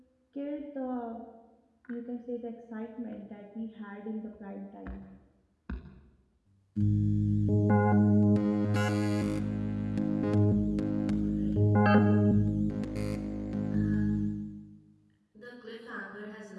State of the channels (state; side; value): identical; both; correlation 1.00